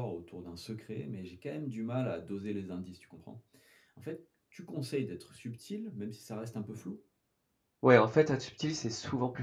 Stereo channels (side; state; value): both; identical; correlation 1.00